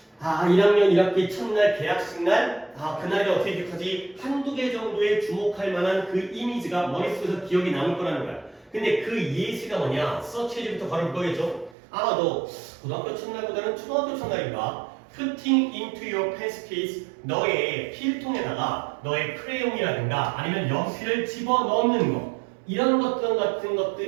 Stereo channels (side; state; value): left; drops out; at 11.8 s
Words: 1학년 1학기 첫날 개학식 날 그날이 어떻게 기억하지? 한두 개 정도의 주목할 만한 그 이미지가 머릿속에서 기억이 남을 거라는 거야. 근데 그 예시가 뭐냐? 서치해지부터 바로 거겠죠? 아마도 고등학교 첫날보다는 초등학교 첫날인가? Putting into your pencil case 너의 필통에다가 너의 크레용이라든가 아니면 연필을 집어넣는 거 이런 것들 같은